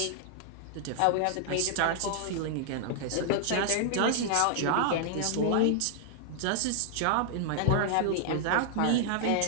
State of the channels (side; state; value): both; different; correlation -0.01